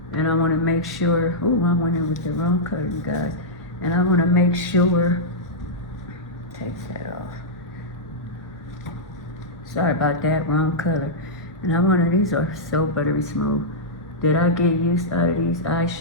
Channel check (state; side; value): normal; both; correlation -0.10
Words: and I want to make sure, oh, I went in with the wrong color, you guys, and I want to make sure, take that off, sorry about that, wrong color. And I wanted, these are so buttery smooth, that I get used out of these